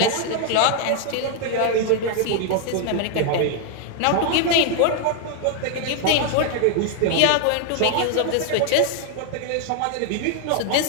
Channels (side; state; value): both; different; correlation 0.00